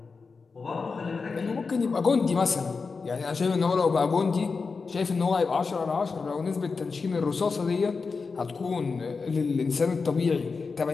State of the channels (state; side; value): quieter; right; 4.7 dB